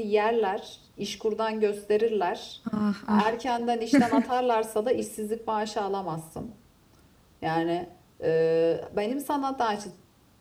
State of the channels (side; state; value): both; identical; correlation 1.00